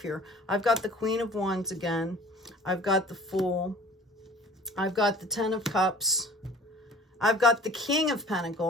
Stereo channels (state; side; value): normal; both; correlation 0.47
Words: here. I've got the Queen of Wands again. I've got the Fool. I've got the Ten of Cups. I've got the King of